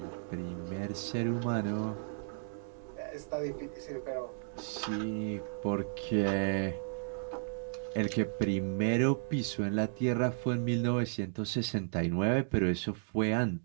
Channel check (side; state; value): left; silent; digital silence